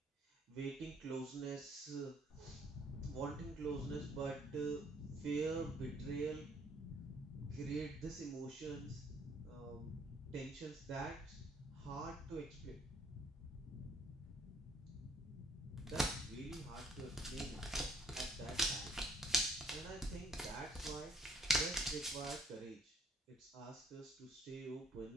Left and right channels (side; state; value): both; normal; correlation 0.63